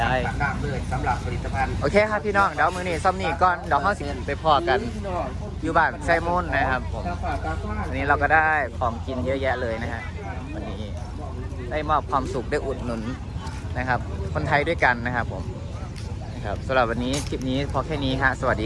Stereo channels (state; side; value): identical; both; correlation 1.00